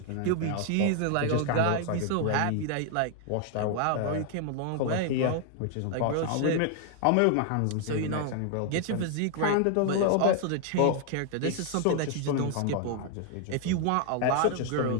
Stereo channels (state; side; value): different; both; correlation 0.00